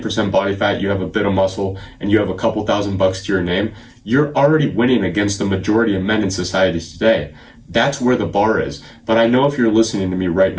body fat, you have a bit of muscle, and you have a couple $1,000 to your name, you're already winning against the majority of men in society today. That's where the bar is. But I know if you're listening to me right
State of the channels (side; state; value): both; identical; correlation 1.00